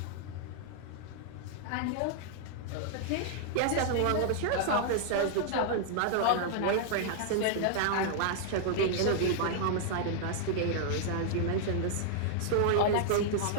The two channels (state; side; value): different; both; correlation -0.01